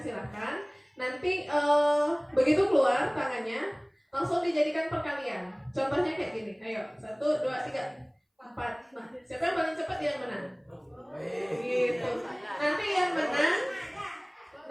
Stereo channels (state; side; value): identical; both; correlation 1.00